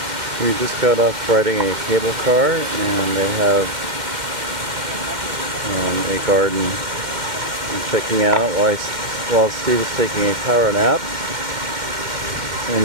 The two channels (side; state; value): left; late; 2.1 ms